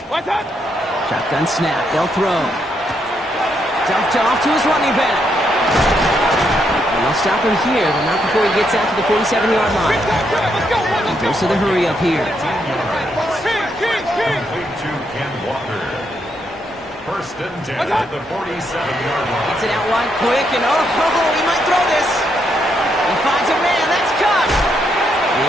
What's up? Shotgun snap. They'll throw. Dumped off to his running back. And they'll stop him here, but not before he gets out to the 47-yard line. He goes to the hurry up here. First and 10 at the 47-yard line. Gets it out wide quick, and he might throw this. He finds a man. That's caught.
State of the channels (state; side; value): normal; both; correlation 0.77